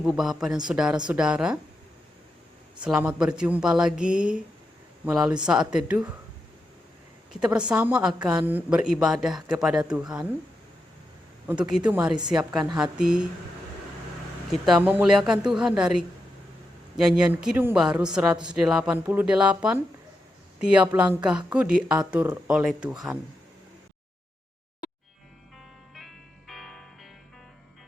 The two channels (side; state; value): both; normal; correlation 0.86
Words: Bapak dan Saudara-saudara. Selamat berjumpa lagi melalui saat teduh. Kita bersama akan beribadah kepada Tuhan. Untuk itu mari siapkan hati. Kita memuliakan Tuhan dari nyanyian Kidung Baru 188, Tiap langkahku diatur oleh Tuhan.